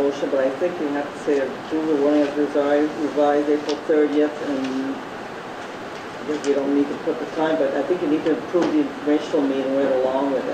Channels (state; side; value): identical; both; correlation 1.00